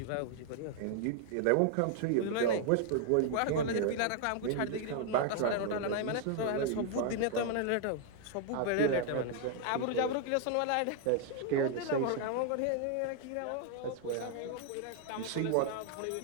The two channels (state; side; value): different; both; correlation 0.00